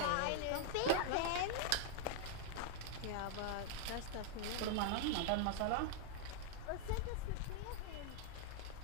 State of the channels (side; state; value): both; different; correlation 0.00